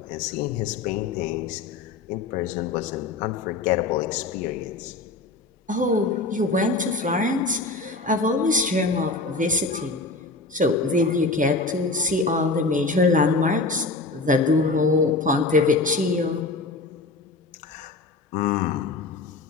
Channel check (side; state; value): right; quieter; 3.5 dB